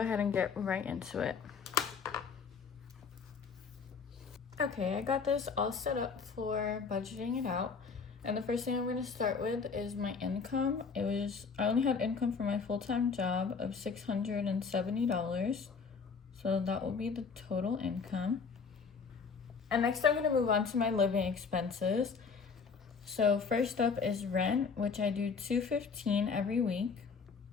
and get right into it. Okay, I got this all set up for budgeting it out. And the first thing I'm going to start with is my income. I only had income for my full-time job of $670. So that will be the total income. And next I'm going to move on to my living expenses. So first up is rent, which I do $215 every week.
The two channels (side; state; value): right; quieter; 5.4 dB